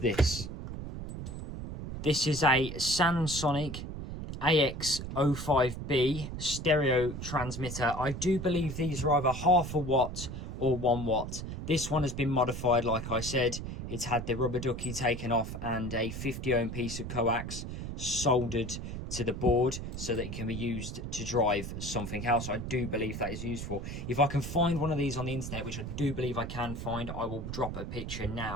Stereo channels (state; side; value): noise; right; rumble, 7 dB below the sound